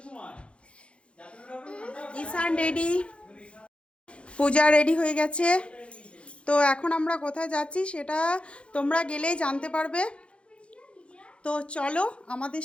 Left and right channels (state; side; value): late; right; 0.059 ms